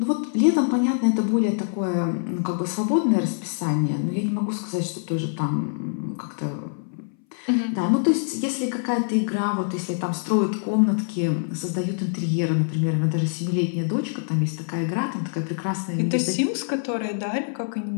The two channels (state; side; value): silent; right; 61 dB below the other